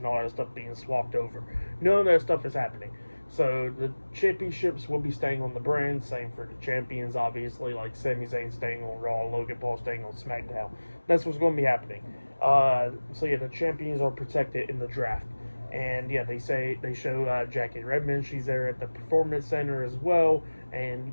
all that stuff being swapped over. None of that stuff is happening. So the championships will be staying on the brand. Same for the champions, obviously, like Sami Zayn staying on Raw, Logan Paul staying on SmackDown. That's what's going to be happening. So yeah, the champions are protected in the draft. And yeah, they show Jackie Redmond. She's there at the Performance Center as well,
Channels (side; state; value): both; inverted; correlation -1.00